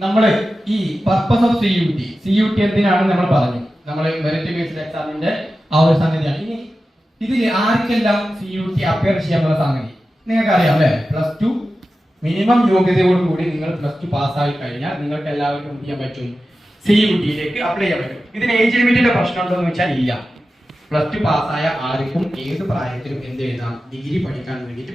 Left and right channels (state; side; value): normal; both; correlation 0.93